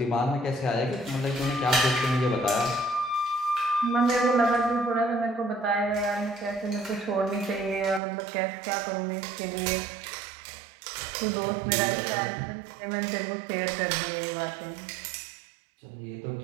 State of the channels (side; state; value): left; drops out; at 8.0 s